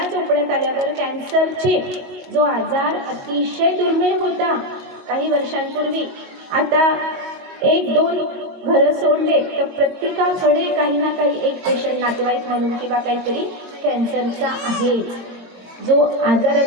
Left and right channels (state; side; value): late; left; 22 ms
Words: चोपड्यात आल्यावर कॅन्सरचे जो आजार अतिशय दुर्मिळ होता काही वर्षांपूर्वी, आता 1-2 घरं सोडले तर प्रत्येकाकडे काही ना काही एक पेशंट, नातेवाईक म्हणून किंवा काहीतरी कॅन्सरचा आहे. जो